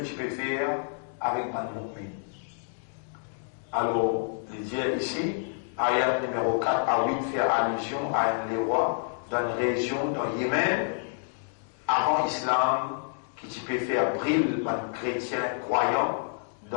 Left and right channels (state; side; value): silent; right; digital silence